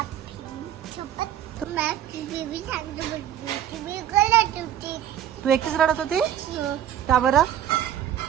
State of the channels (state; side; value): quieter; left; 10.7 dB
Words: तू एकटीच रडत होती का बरं?